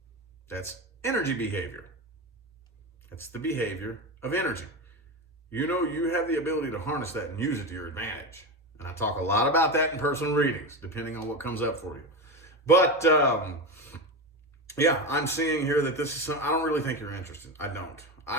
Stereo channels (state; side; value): normal; both; correlation 0.19